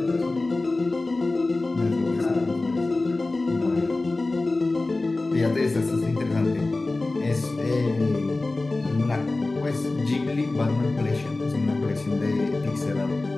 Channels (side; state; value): right; quieter; 3.1 dB